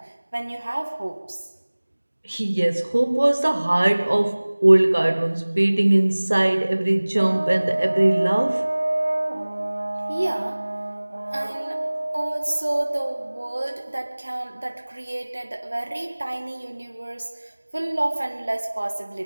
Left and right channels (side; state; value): both; inverted; correlation -1.00